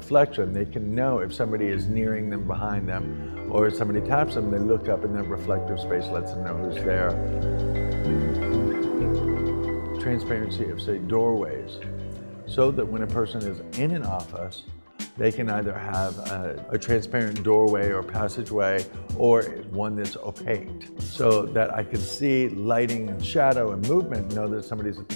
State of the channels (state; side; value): inverted; both; correlation -1.00